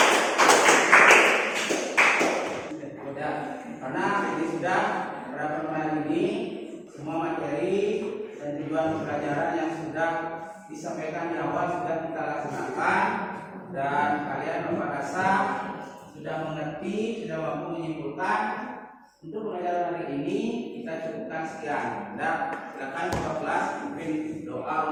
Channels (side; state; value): both; identical; correlation 1.00